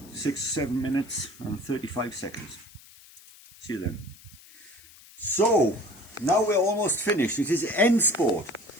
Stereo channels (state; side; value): noise; left; hiss, 22 dB below the sound